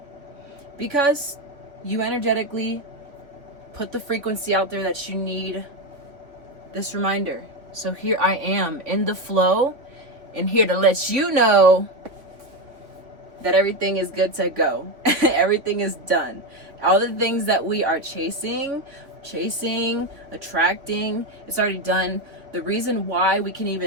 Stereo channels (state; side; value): late; left; 3.3 ms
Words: because you energetically put the frequency out there that you need this reminder. So here I am in the flow and here to let you know that everything is good to go. Everything is done. All the things that we are chasing, attracting, it's already done. The reason why we can